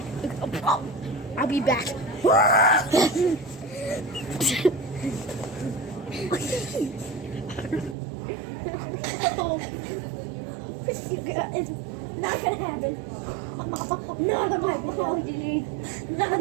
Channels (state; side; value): drops out; left; at 8.0 s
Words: I'll be back. It's not gonna happen. Not on my video. Not